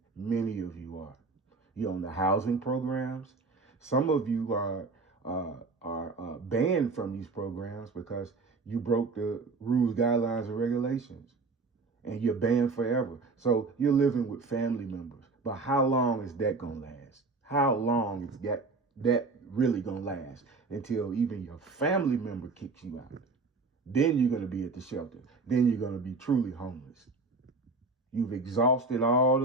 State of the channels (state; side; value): quieter; left; 3.8 dB